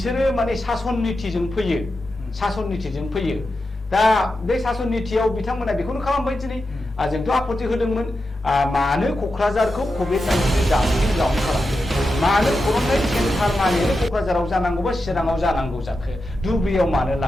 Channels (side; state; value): both; normal; correlation 0.90